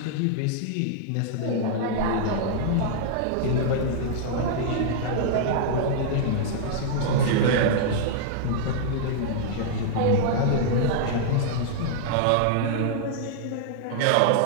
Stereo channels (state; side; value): different; both; correlation -0.01